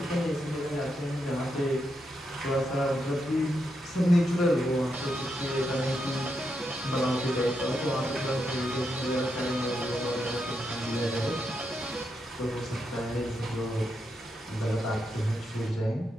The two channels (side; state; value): both; normal; correlation 0.83